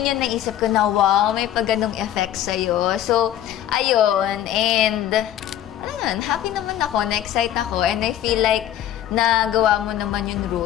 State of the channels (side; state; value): right; quieter; 11.8 dB